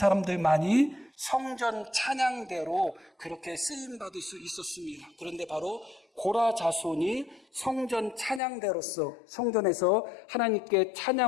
성전 찬양대로 그렇게 쓰임받을 수 있었습니다. 그런데 바로 고라 자손이 성전 찬양대로서 성전에서 하나님께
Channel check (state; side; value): drops out; right; at 8.4 s